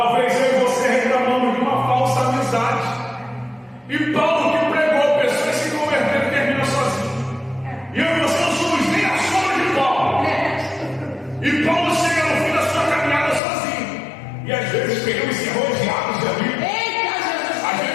eu e você reclamando de uma falsa amizade. E Paulo, que pregou, pessoas se converteram e termina sozinho. E eu e você não somos nem a sombra de Paulo. E Paulo chega no fim da sua caminhada sozinho. E às vezes queremos ser rodeados de amigos. Às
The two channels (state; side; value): drops out; right; at 13.4 s